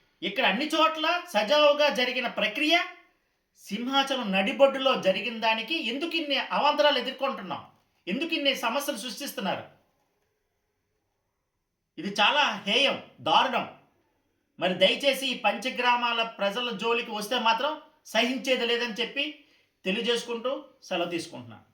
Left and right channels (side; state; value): both; identical; correlation 1.00